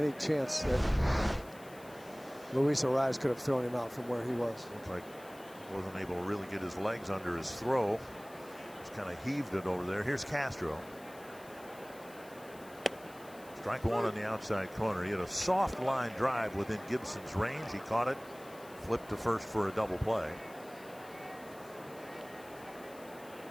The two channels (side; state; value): left; noise; hiss, 22 dB below the sound